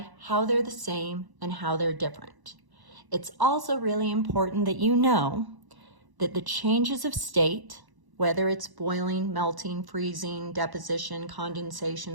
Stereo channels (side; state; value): left; late; 1.0 ms